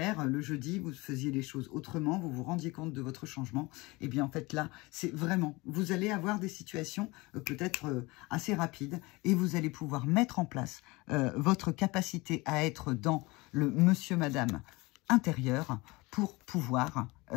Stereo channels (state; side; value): quieter; right; 23.4 dB